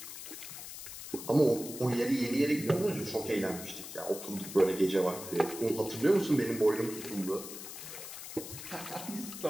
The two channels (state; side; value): noise; left; hiss, 10 dB below the sound